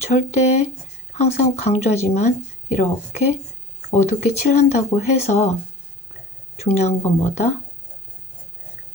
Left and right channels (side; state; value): both; normal; correlation 0.40